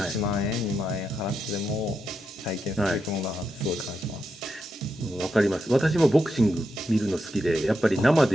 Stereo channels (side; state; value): both; normal; correlation 0.84